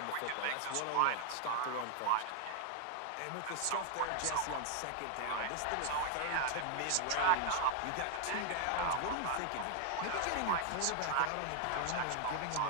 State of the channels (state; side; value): different; both; correlation 0.00